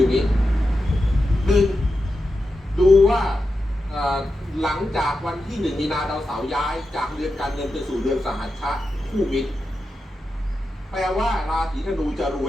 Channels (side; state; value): both; normal; correlation 0.89